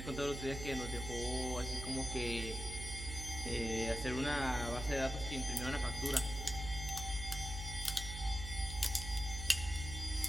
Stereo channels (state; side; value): noise; right; hum, 7 dB below the sound